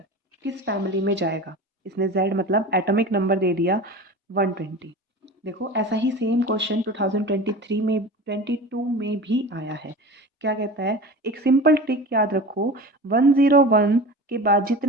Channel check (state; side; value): normal; both; correlation 0.33